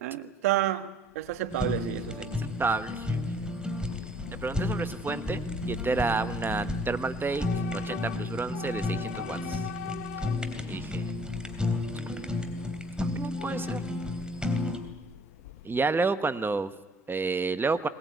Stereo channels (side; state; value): both; normal; correlation 0.58